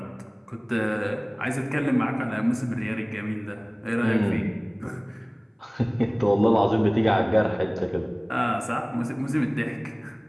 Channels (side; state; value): both; identical; correlation 1.00